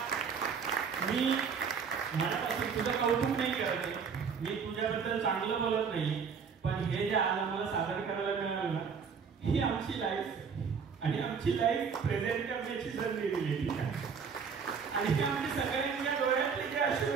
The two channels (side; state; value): left; quieter; 6.1 dB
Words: मी मनापासून तुझं कौतुक नाही करत मी तुझ्याबद्दल चांगलं बोलत नाही पण हे जे आज आम्हाला सादर करायला मिळालं ना ही आमची लाईफ आणि आमची लाईफ प्रेझेंट करण्याची संधी दिलेली आहे आणि ही आमची सगळ्यांच्या डोळ्यातले जे अश्रू